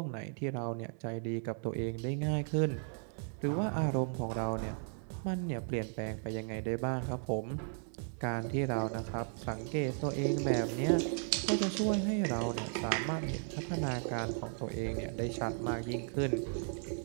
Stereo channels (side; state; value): left; silent; 54 dB below the other